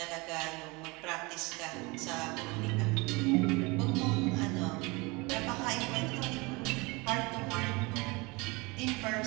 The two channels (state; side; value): quieter; left; 25.7 dB